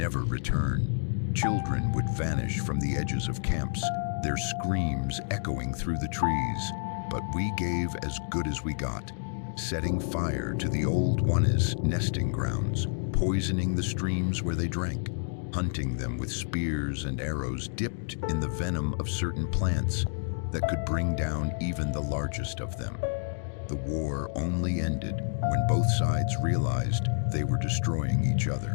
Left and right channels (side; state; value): right; silent; digital silence